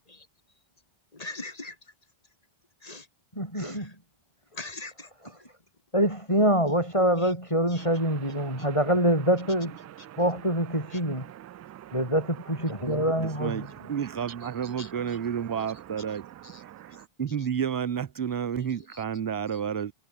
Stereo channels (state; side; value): late; right; 1.8 ms